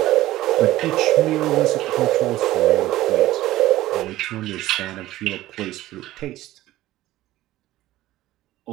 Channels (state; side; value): quieter; left; 15.7 dB